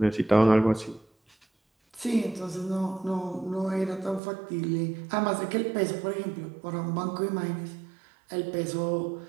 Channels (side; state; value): left; drops out; at 4.2 s